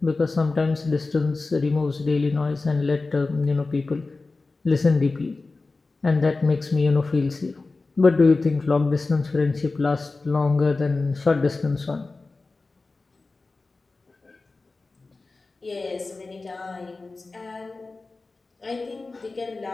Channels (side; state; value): right; quieter; 3.6 dB